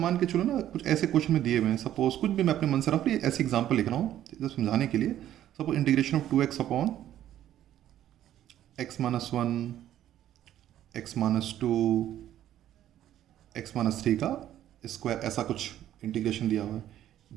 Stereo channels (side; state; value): left; quieter; 12.0 dB